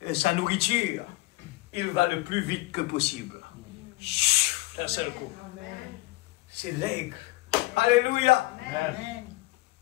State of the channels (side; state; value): right; quieter; 20.7 dB